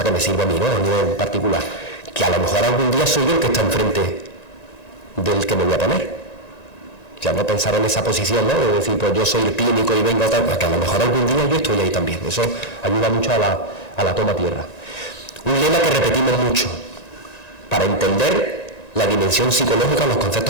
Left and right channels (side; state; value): right; late; 1.9 ms